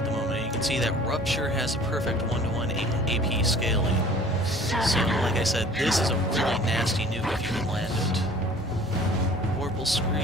the moment. You can see that Rupture has a perfect 1-to-1 AP scaling. So like I said, this is a really nasty nuke if you can land it. Vorpal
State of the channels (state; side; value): normal; both; correlation 0.49